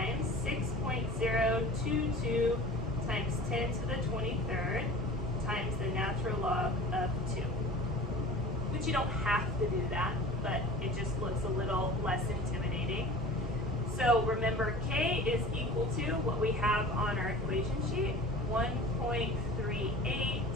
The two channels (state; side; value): normal; both; correlation 0.41